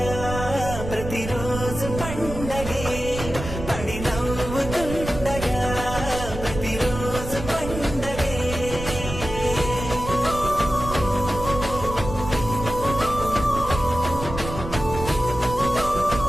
ప్రతిరోజు పండగే పడి నవ్వుతుండగా ప్రతిరోజు పండగే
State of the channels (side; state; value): right; noise; rumble, 8 dB below the sound